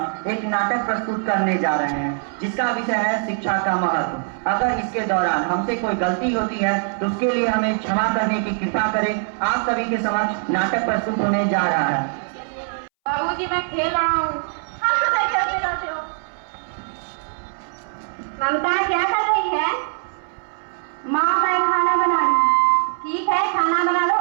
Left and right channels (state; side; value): silent; left; 63 dB below the other